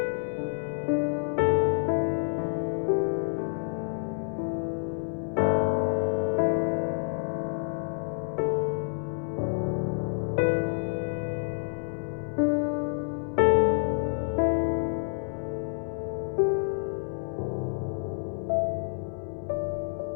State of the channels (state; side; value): silent; right; 59 dB below the other